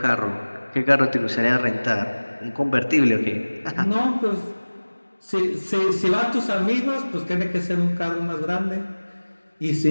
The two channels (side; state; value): both; inverted; correlation -1.00